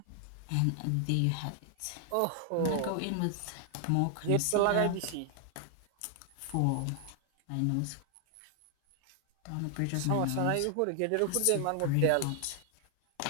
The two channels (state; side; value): different; both; correlation 0.00